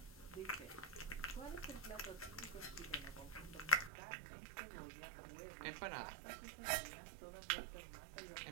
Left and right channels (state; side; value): drops out; left; at 3.9 s